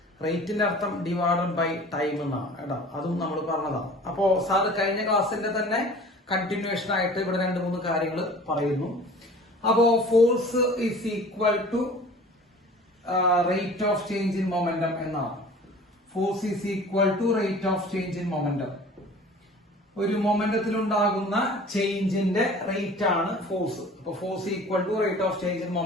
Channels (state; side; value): normal; both; correlation 0.45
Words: റേറ്റിന്റെ അർത്ഥം ഡിവൈഡഡ് ബൈ ടൈം എന്നാണ് കേട്ടോ. അതും നമ്മൾ പറഞ്ഞതാണ്. അപ്പോ സാർ കഴിഞ്ഞ ക്ലാസ്സിന്റെ തന്നെ കണ്ടിന്യൂഷൻ ആയിട്ട് ഇവിടെ 2-3 കാര്യങ്ങൾ പറയുന്നു. അപ്പോ force is equal to rate of change in momentum എന്നാണ്. Force is equal to rate of change in momentum. ഒരു മൊമെന്റത്തിൽ ഉണ്ടാകുന്ന ചേഞ്ചിന്റെ റേറ്റ് ആണ് ഫോഴ്സ്. അപ്പൊ force equal to rate of change in